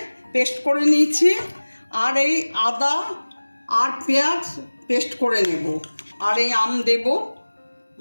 পেস্ট করে নিয়েছি। আর এই আদা আর পেঁয়াজ পেস্ট করে নেব। আর এই আম দেব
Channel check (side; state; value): both; inverted; correlation -1.00